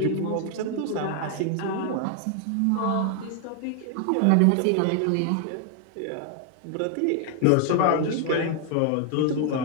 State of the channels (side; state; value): both; different; correlation 0.00